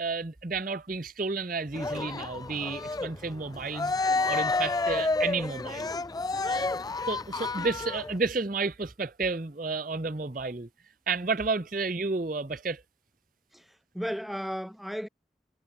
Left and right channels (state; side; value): normal; both; correlation 0.44